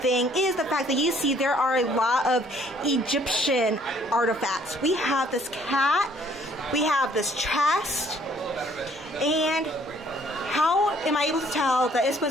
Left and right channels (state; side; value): normal; both; correlation 0.61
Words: is the fact that you see there are a lot of Egyptian artifacts. We have this cat, we have this chest, and how am I able to tell that it's